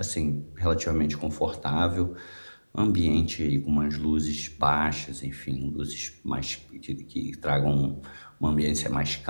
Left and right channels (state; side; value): inverted; both; correlation -1.00